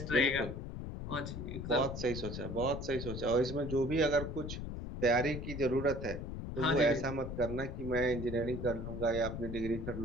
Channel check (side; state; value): left; noise; rumble, 6 dB below the sound